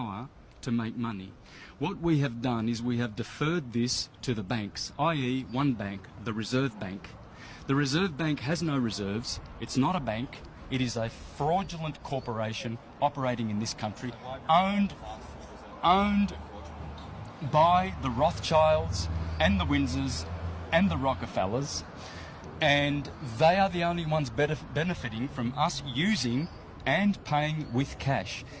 to make money. What we have done is we have deferred this to the banks, i.e. one bank, the Reserve Bank. The Reserve Bank has no reserves. It's not a bank. It is a fraudulent corporation operating in this country, owned by the Rothschilds and the Windsors and the Rockefellers, and they are the only ones benefiting from us using and paying with cash.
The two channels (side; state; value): both; identical; correlation 1.00